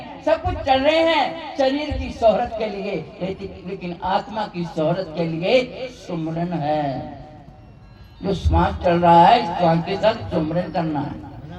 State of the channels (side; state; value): both; identical; correlation 1.00